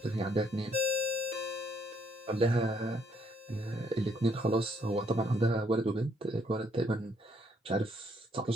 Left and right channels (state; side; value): normal; both; correlation 0.70